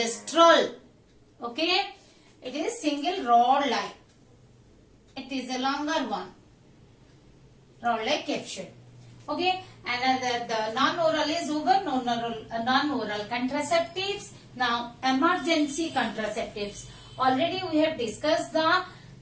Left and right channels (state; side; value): identical; both; correlation 1.00